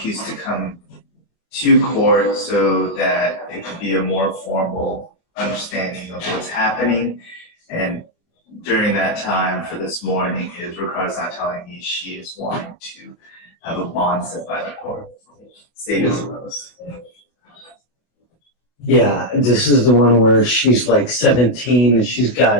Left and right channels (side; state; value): right; late; 24 ms